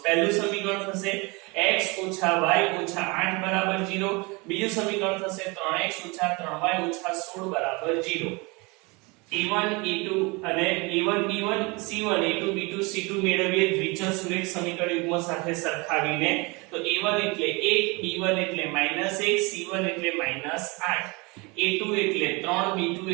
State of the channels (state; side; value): quieter; left; 27.2 dB